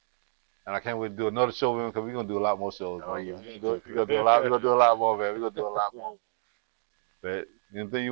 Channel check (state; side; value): silent; left; digital silence